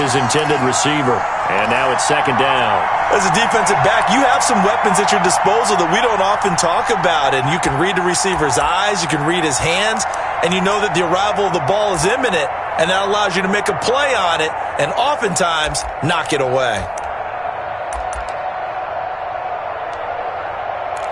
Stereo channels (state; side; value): identical; both; correlation 1.00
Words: intended receiver. And now it's 2nd down. As a defensive back, you have some weapons at your disposal that we don't often talk about. And you can read the receiver's eyes, you can read his hands, and you know that the arrival of the ball is imminent. And that allows you to make a play on it and oftentimes knock it away.